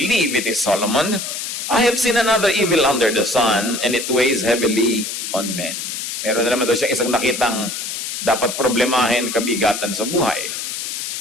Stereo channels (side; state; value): left; noise; hiss, 5 dB below the sound